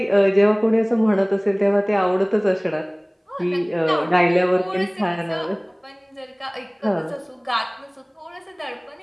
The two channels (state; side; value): identical; both; correlation 1.00